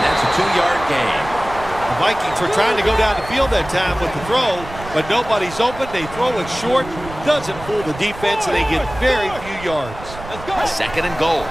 that's a 2-yard gain. The Vikings were trying to go down the field that time with the throw, but nobody's open. They throw it short. Doesn't fool the defense, and they get very few yards. Second and goal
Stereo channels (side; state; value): right; noise; rumble, 14 dB below the sound